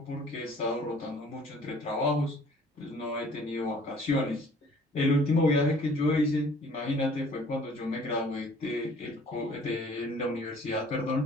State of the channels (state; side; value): normal; both; correlation 0.54